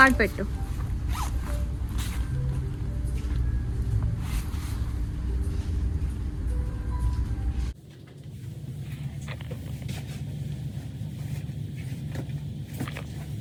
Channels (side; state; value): both; identical; correlation 1.00